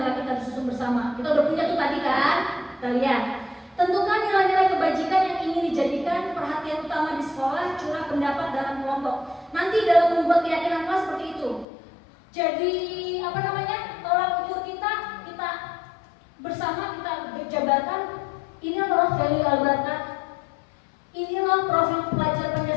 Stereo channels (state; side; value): drops out; right; at 11.7 s